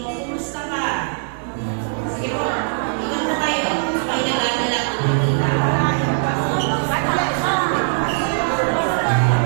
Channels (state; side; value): silent; left; digital silence